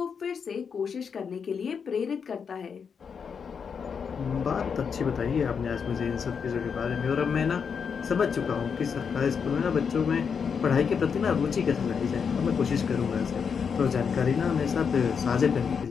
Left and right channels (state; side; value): quieter; right; 6.4 dB